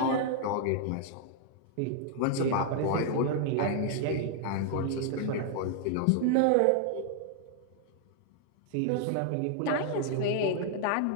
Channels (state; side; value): different; both; correlation -0.01